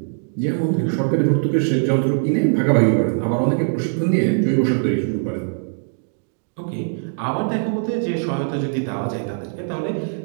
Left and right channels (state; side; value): silent; left; digital silence